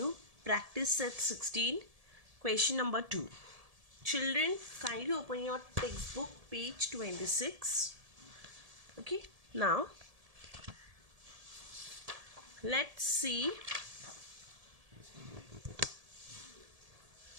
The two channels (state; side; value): late; left; 1.7 ms